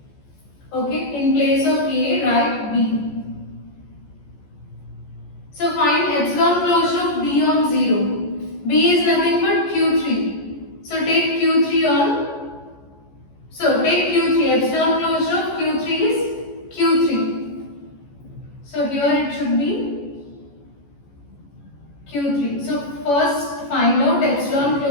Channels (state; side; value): late; right; 14 ms